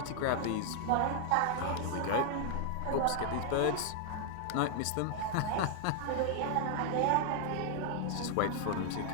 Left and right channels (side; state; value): both; different; correlation 0.00